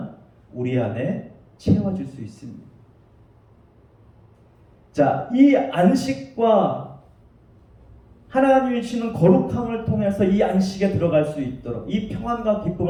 우리 안에 채워질 수 있습니다. 자, 이 안식과 하나님이 주시는 거룩함을 통해서 이 안식에 들어갈 수 있도록, 이 평안과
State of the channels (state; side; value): identical; both; correlation 1.00